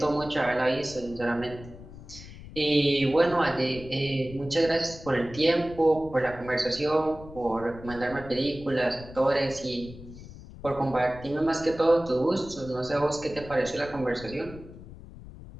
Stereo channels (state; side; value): noise; left; rumble, 16 dB below the sound